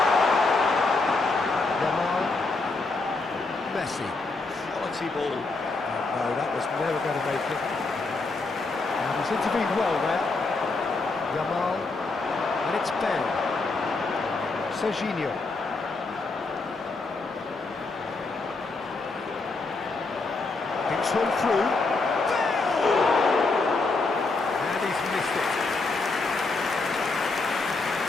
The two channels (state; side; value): quieter; right; 3.6 dB